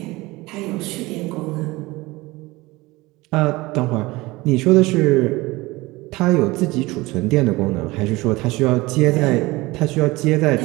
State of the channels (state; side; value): quieter; left; 21.1 dB